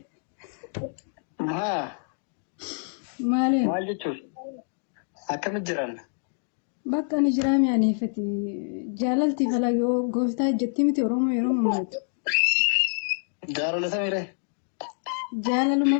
Maali? Maal jechuun akkamitti jiraanna? Bakka ni jiraame anifati. Jaalalti falagoo gooftaa jetti miti Oromoo yeroo mummaltu. Jaalala samiire. Jaalaluma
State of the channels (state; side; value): silent; right; digital silence